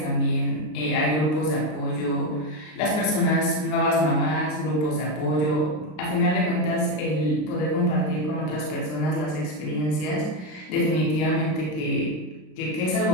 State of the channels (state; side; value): late; right; 33 ms